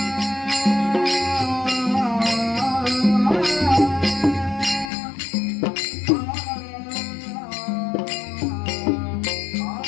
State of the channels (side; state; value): right; drops out; at 4.9 s